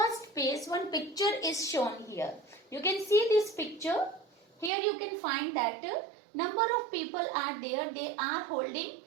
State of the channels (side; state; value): left; drops out; at 4.7 s